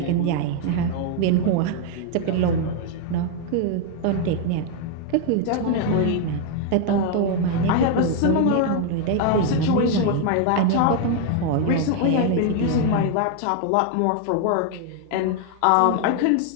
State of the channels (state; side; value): different; both; correlation 0.00